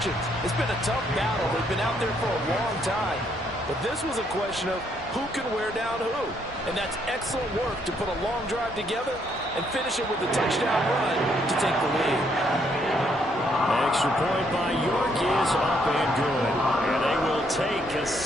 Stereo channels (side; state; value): both; normal; correlation 0.71